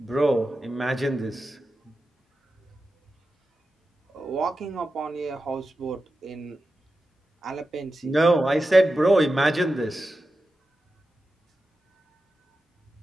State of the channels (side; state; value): both; normal; correlation 0.92